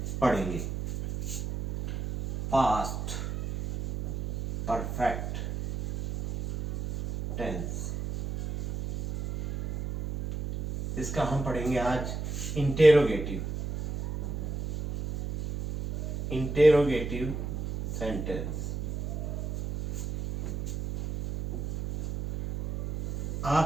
पढ़ेंगे। पास्ट परफेक्ट टेंस, इसका हम पढ़ेंगे आज इंटेरोगेटिव सेंटेंस।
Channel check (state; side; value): noise; right; hum, 5 dB below the sound